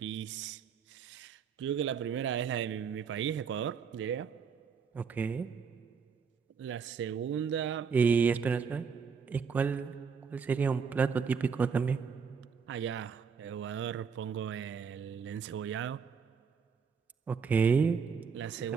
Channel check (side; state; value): left; quieter; 6.1 dB